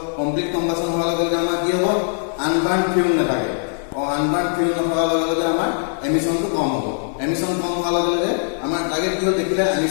কমপ্লিট কম্বাসন হোৱাৰ লগে লগে আমাৰ কি হ'ব আনবাৰ্ন ফিউল নাথাকে আনবাৰ্ন ফিউল নথকাৰ লগে লগে আমাৰ এমিশনটো কম হ'ব এমিশন কম হোৱাৰ লগে লগে আমাৰ টাৰ্গেট কি হ'ল দেখিলে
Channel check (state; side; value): silent; right; digital silence